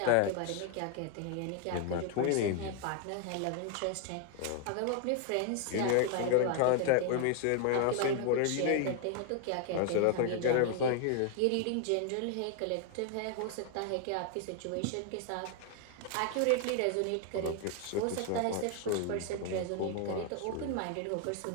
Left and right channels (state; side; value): different; both; correlation 0.00